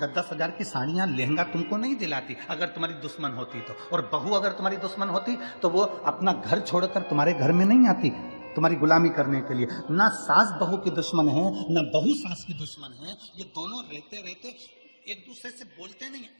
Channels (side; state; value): both; inverted; correlation -1.00